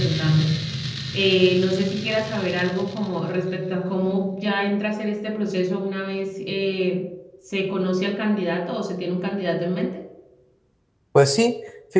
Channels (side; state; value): both; identical; correlation 1.00